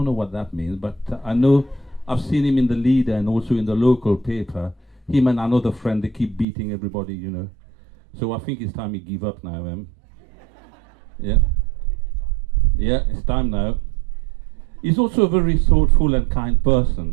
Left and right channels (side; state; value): left; drops out; at 6.5 s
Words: know what that means, but I know I've seen him in the Leader and also in the local paper. Him and another friend, they keep beating everybody, you know. So I think it's time he give up now, Yeah. Yeah, it's time now. He's also a very thoughtful and kind